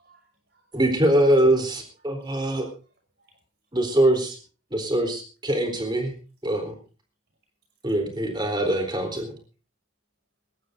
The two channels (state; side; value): normal; both; correlation 0.63